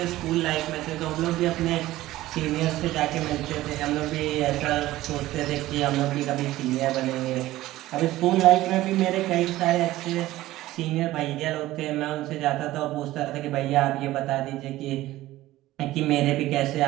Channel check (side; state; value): left; quieter; 16.2 dB